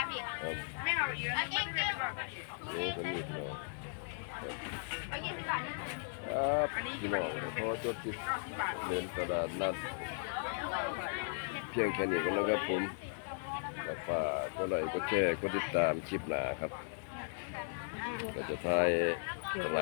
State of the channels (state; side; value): silent; right; digital silence